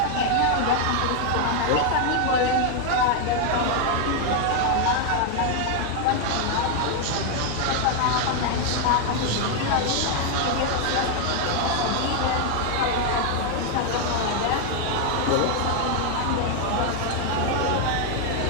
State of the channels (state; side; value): different; both; correlation 0.00